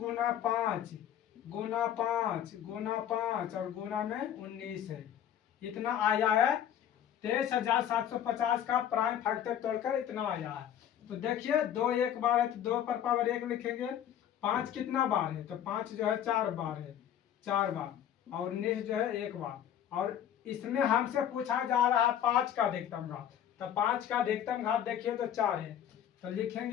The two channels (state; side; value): quieter; right; 10.1 dB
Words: 5 गुना 5 गुना 5 और गुना में 19 है, इतना आया है। 23,750 का प्राइम फैक्टर तोड़कर इतना आया है। तो देखिए 2 एक बार है तो 2 पर पावर 1 लिखेंगे, 5 कितना बार है तो 5 जो है 4 बार है, 4 बार और 19 जो है 1 बार। और इसमें हमसे पूछा जा रहा है 5 का अधिकतम घात, तो 5 का अधिकतम घात देखिए तो 4 है, तो